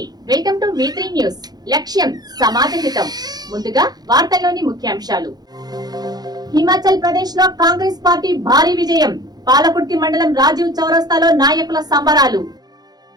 welcome to V3 news. లక్ష్యం సమాజ హితం. ముందుగా వార్తల్లోని ముఖ్యాంశాలు. హిమాచల్ ప్రదేశ్ లో కాంగ్రెస్ పార్టీ భారీ విజయం. పాలకుర్తి మండలం రాజీవ్ చౌరస్తాలో నాయకుల సంబరాలు.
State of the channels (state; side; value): late; left; 0.19 ms